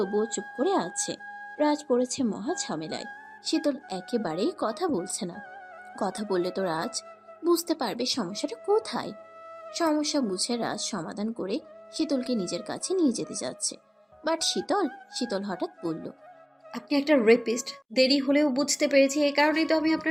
চুপ করে আছে। রাজ পড়েছে মহা ঝামেলায়। শীতল একেবারেই কথা বলছে না। কথা বললে তো রাজ বুঝতে পারবে সমস্যাটা কোথায়। সমস্যা বুঝে রাজ সমাধান করে শীতলকে নিজের কাছে নিয়ে যেতে যাচ্ছে। বাট শীতল হঠাৎ বলল। আপনি একটা রেপিস্ট। দেরি হলেও বুঝতে পেরেছি, এই কারণেই তো আমি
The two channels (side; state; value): both; identical; correlation 1.00